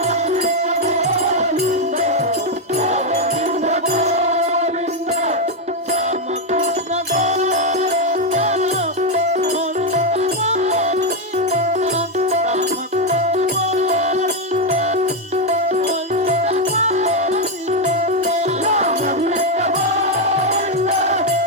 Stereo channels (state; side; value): normal; both; correlation 0.04